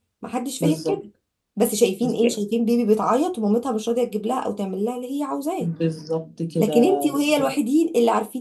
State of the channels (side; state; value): both; identical; correlation 1.00